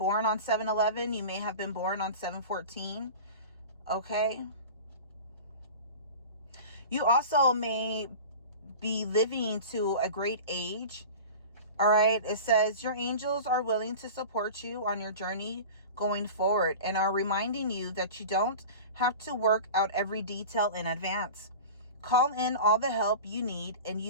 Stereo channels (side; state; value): both; inverted; correlation -0.35